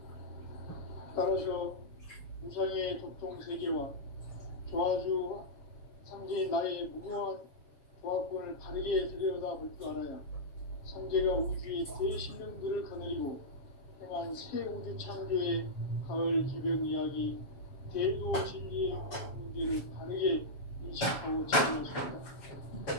따라서 우상의 도통 세계와 조화주 상제인 나의 무궁한 조화권을 바르게 들여다볼 줄 알아야 상제가 우주의 대신령들을 거느리고 행한 새 우주 창조의 가을 기병 이야기, 대도 진리의 문제를 바르게 인식하고 진행할 수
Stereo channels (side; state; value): right; late; 7.2 ms